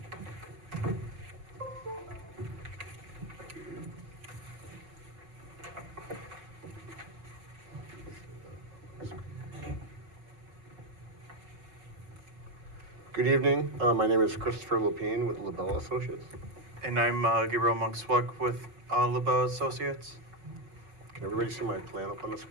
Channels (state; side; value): late; left; 5.3 ms